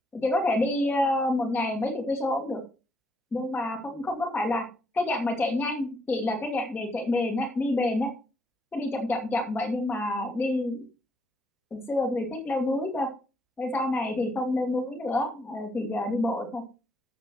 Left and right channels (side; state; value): both; normal; correlation 0.74